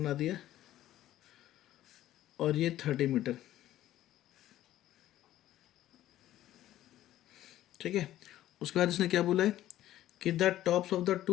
दिया और ये 30 मीटर। ठीक है, उसके बाद इसने क्या बोला है कि the tops of the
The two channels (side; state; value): right; quieter; 13.6 dB